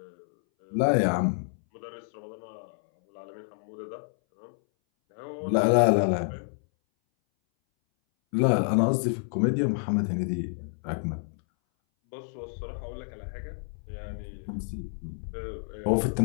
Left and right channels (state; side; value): silent; right; 59 dB below the other